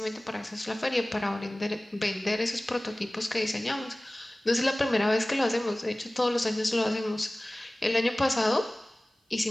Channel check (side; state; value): both; normal; correlation 0.98